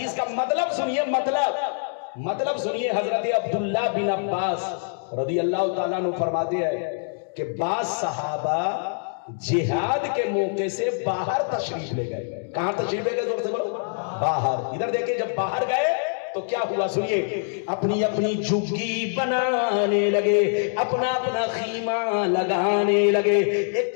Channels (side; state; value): right; silent; digital silence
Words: کا مطلب سنیے، مطلب سنیے۔ حضرت عبداللہ بن عباس رضی اللہ تعالیٰ عنہ فرماتے ہیں کہ بعض صحابہ جہاد کے موقع سے باہر تشریف لے گئے۔ کہاں تشریف لے گئے؟ زور سے بولو، باہر۔ ادھر دیکھیں، جب باہر گئے تو کیا ہوا سنیے، اپنی اپنی جھگی بنانے لگے، اپنا اپنا خیمہ لگانے لگے، ایک